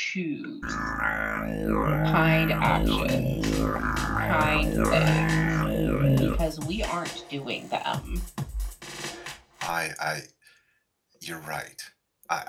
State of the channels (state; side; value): identical; both; correlation 1.00